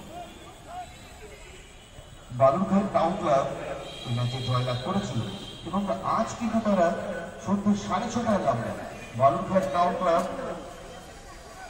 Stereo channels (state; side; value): identical; both; correlation 1.00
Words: বালুরঘাট টাউন ক্লাব এই ম্যাচে জয়লাভ করেছিল এবং আজ কিন্তু তারা সন্ধ্যে 6:30টায় নামবে বালুরঘাট টাউন ক্লাব